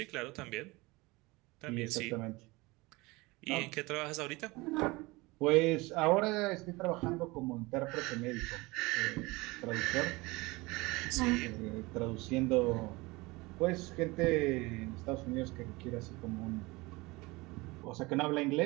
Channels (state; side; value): quieter; left; 23.1 dB